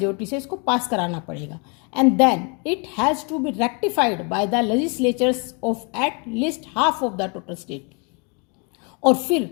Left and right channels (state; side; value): quieter; right; 34.4 dB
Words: से इसको पास कराना पड़ेगा। And then it has to be rectified by the legislatures of at least half of the total state. और फिर